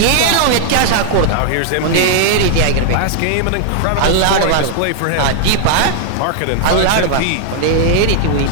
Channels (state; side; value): different; both; correlation -0.01